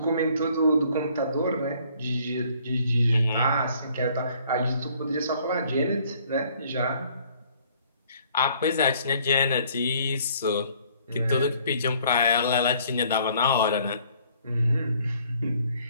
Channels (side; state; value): both; inverted; correlation -0.60